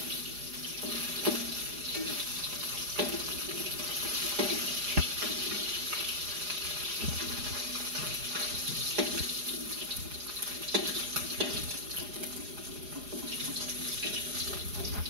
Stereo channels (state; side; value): late; left; 4.9 ms